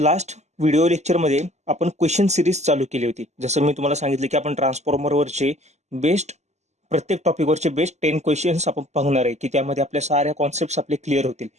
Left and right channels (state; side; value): late; left; 0.33 ms